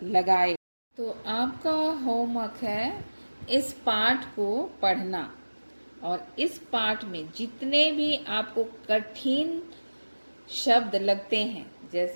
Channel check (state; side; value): inverted; both; correlation -1.00